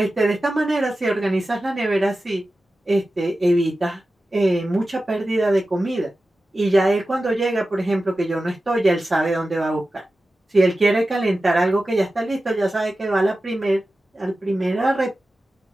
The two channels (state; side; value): normal; both; correlation 0.94